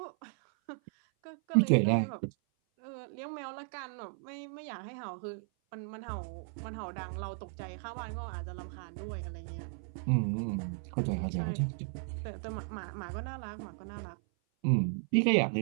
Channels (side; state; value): left; silent; 54 dB below the other